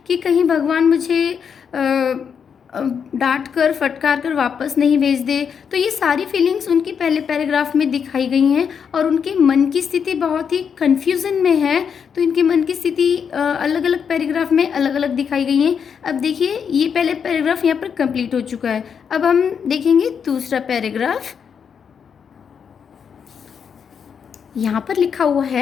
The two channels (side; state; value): right; quieter; 7.0 dB